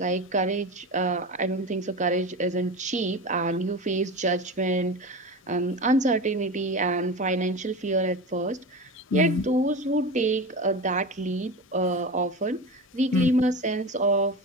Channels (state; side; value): normal; both; correlation 0.27